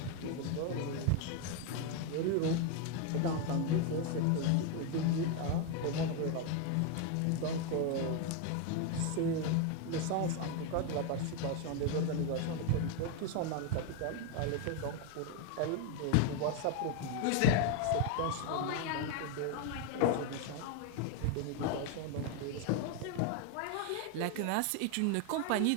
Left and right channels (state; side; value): different; both; correlation 0.01